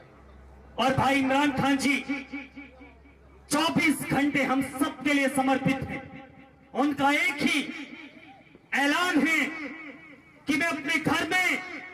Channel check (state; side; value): identical; both; correlation 1.00